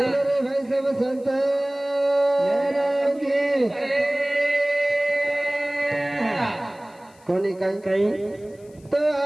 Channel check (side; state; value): left; noise; hiss, 30 dB below the sound